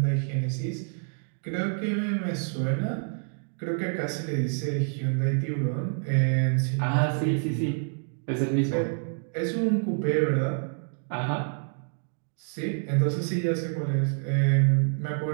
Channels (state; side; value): silent; left; 60 dB below the other